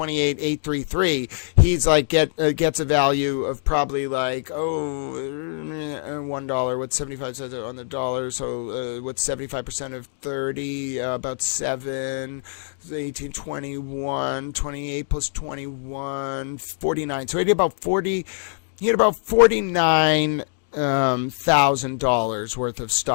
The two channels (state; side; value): silent; right; digital silence